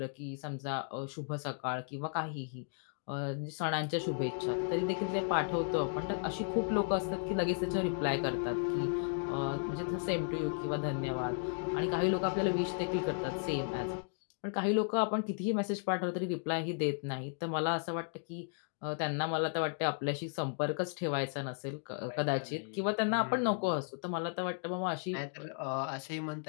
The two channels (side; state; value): right; silent; digital silence